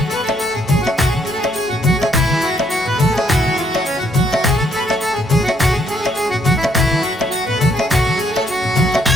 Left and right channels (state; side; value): normal; both; correlation 0.71